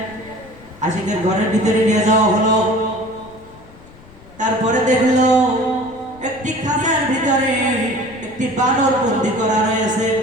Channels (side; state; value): left; noise; rumble, 23 dB below the sound